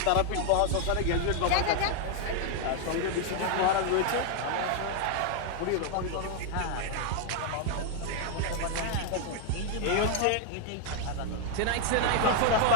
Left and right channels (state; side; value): different; both; correlation 0.00